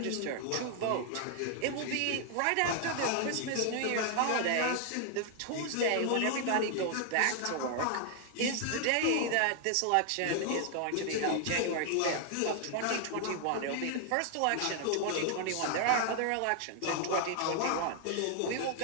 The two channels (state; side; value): different; both; correlation 0.00